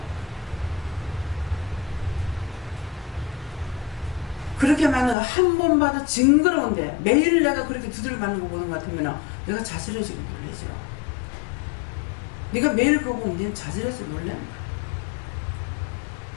그렇게 맞는 거 한 번 봐도 징그러운데 매일 내가 그렇게 두들겨 맞는 거 보는 것 같으면 내가 자질해지고 놀래죠. 네가 매일 그거 보면 네는 자질해서 놀랜다.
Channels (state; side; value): drops out; right; at 5.2 s